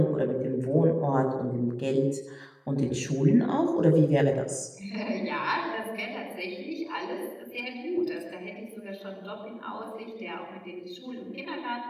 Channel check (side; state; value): both; identical; correlation 1.00